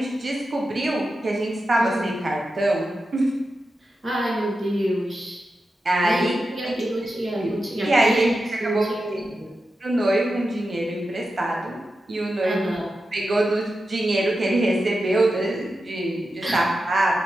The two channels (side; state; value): both; normal; correlation 0.91